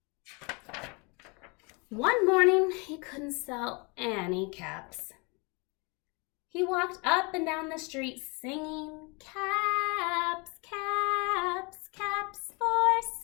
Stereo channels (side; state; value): right; quieter; 30.5 dB